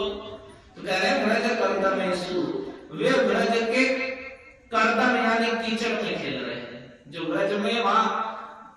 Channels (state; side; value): identical; both; correlation 1.00